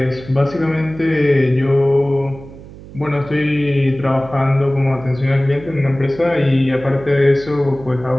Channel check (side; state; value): right; noise; hum, 17 dB below the sound